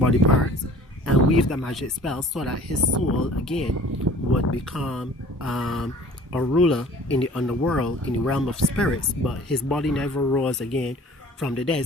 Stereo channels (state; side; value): normal; both; correlation 0.48